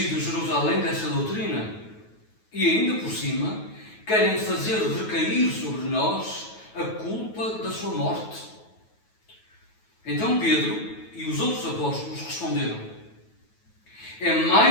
Jerusalém dessa doutrina e ainda por cima querem fazer recair sobre nós a culpa da sua morte. Então Pedro e os outros apóstolos responderam: é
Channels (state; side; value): late; right; 9.2 ms